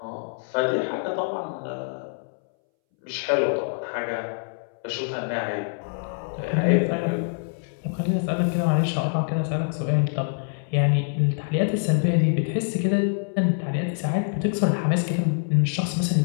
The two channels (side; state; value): right; silent; 62 dB below the other